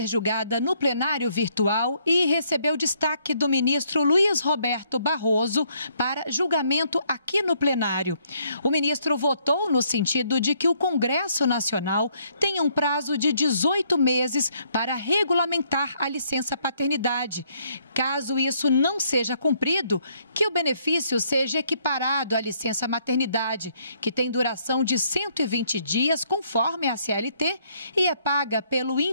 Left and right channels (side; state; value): both; inverted; correlation -0.69